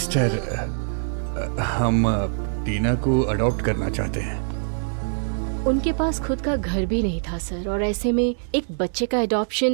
हम टीना को अडॉप्ट करना चाहते हैं। उनके पास खुद का घर भी नहीं था सर, और ऐसे में एक बच्चे का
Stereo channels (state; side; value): silent; left; 61 dB below the other